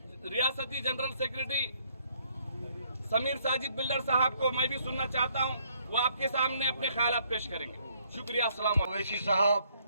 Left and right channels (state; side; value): inverted; both; correlation -0.68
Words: रियासती general secretary Sameer Sajid builder साहब को मैं भी सुनना चाहता हूं, वो आपके सामने अपने ख्यालात पेश करेंगे। शुक्रिया। अस्सलाम ओवैसी साहब,